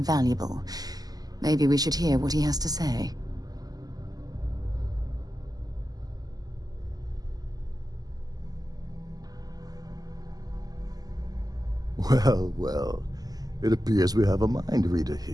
Maybe we should hear what he has to say. Well, well, it appears we have a mind reader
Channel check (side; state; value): left; late; 0.18 ms